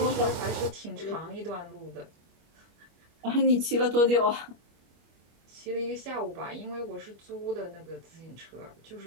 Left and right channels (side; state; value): left; late; 25 ms